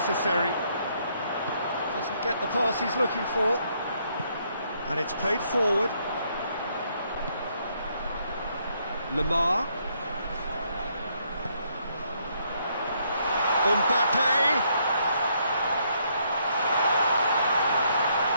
Doesn't get the pass he's looking for. And it's played forward. Lamar. Mbappe.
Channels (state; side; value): inverted; both; correlation -0.72